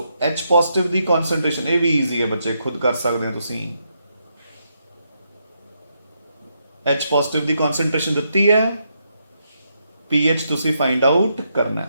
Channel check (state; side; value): inverted; both; correlation -0.80